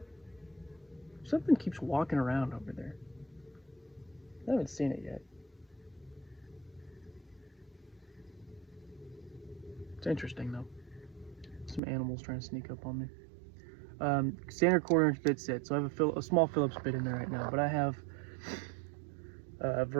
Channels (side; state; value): left; drops out; at 11.8 s